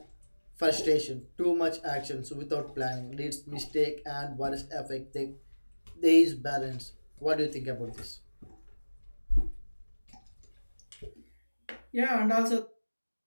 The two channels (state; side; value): inverted; both; correlation -1.00